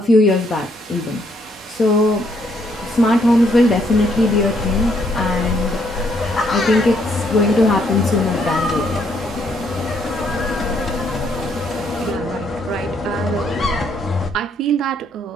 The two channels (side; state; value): both; normal; correlation 0.70